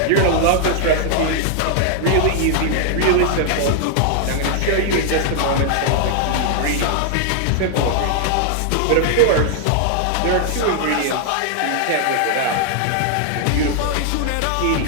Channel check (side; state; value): both; different; correlation 0.00